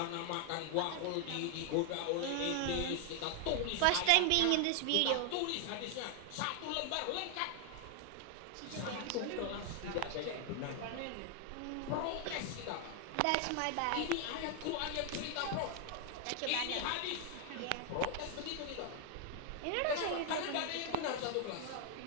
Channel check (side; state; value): both; different; correlation 0.00